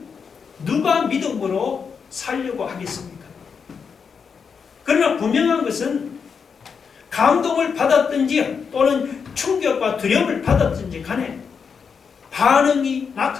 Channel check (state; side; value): quieter; right; 6.1 dB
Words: 누가 믿음으로 살려고 하겠습니까? 그러나 분명한 것은 감동을 받았든지 또는 충격과 두려움을 받았든지 간에 반응이